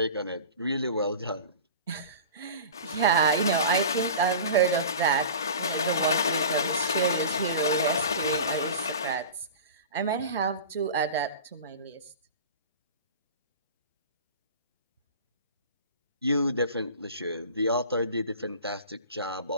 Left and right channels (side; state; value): both; inverted; correlation -0.36